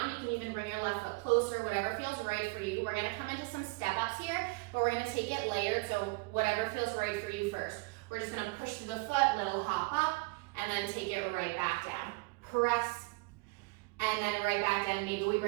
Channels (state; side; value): quieter; left; 26.8 dB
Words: You can even bring your left foot closer, whatever feels right for you. We're gonna come into some step-ups here, but we're gonna take it layered, so whatever feels right for you first. We're just gonna push through the foot, little hop up, and then take it right back down. Press, and then right back down. Maybe we